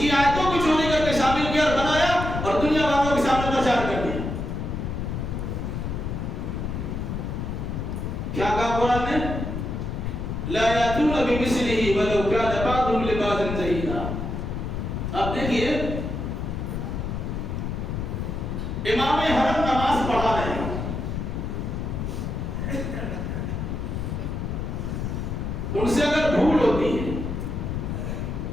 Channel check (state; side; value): noise; left; rumble, 3 dB below the sound